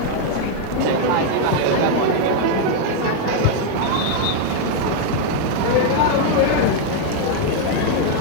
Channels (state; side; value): different; both; correlation 0.00